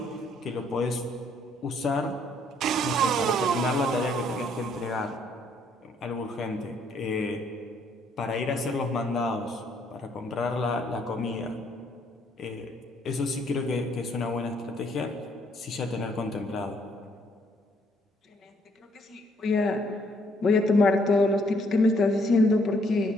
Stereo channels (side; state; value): both; normal; correlation 0.68